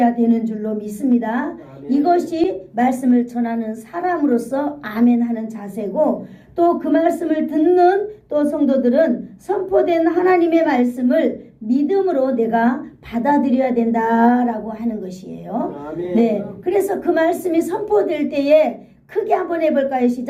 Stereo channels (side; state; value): both; identical; correlation 1.00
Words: 되는 줄로 믿습니다. 아멘. 이것이 말씀을 전하는 사람으로서 아멘 하는 자세고, 또 그 말씀을 듣는 또 성도들은 선포된 하나님의 말씀을 믿음으로 내가 받아들여야 된다라고 하는 것이에요. 아멘. 네, 그래서 그 말씀이 선포될 때에 크게 한번 해볼까요?